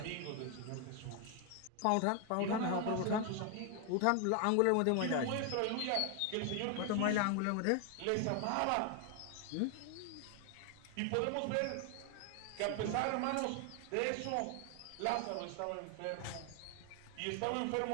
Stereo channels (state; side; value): different; both; correlation 0.01